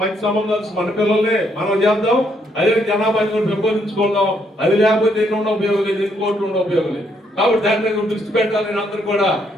మంచి సంబంధాలు మన పిల్లలే మనం చేద్దాం. అదే జనాభాని కూడా పెంపొందించుకుందాం. అది లేకపోతే ఎన్ని ఉండే ఉపయోగం లేదు, ఎన్ని కోట్లు ఉండే ఉపయోగం లేదు. కాబట్టి దాని మీద దృష్టి పెట్టాలని అందరూ కూడా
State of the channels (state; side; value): normal; both; correlation 0.72